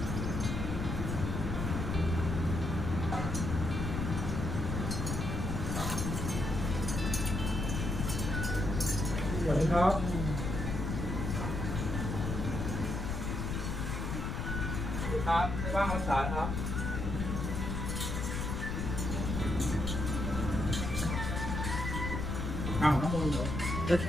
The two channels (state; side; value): noise; left; rumble, 2 dB below the sound